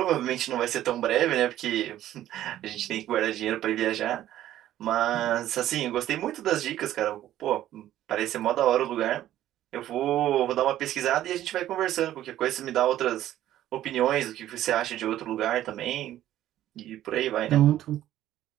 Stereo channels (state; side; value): quieter; left; 12.9 dB